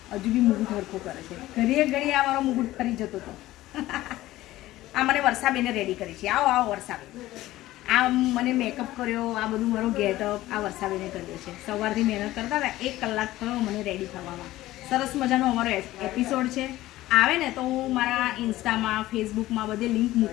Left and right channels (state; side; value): quieter; right; 16.2 dB